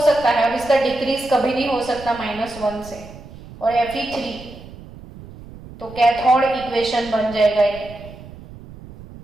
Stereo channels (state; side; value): noise; right; rumble, 17 dB below the sound